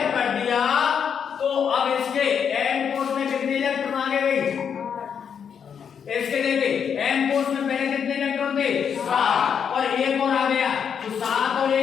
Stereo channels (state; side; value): quieter; right; 7.4 dB